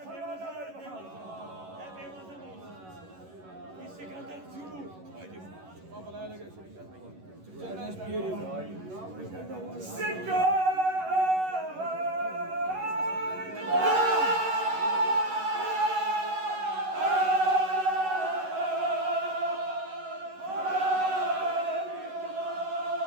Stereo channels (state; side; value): late; left; 11 ms